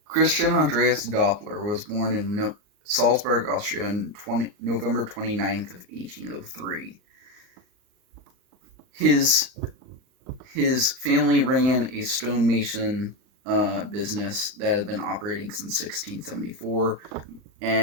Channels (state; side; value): late; left; 39 ms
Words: Christian Andreas Doppler was born in Salzburg, Austria on November 29th of 1803. His his family ran a stonemason business that had been operating since 1674,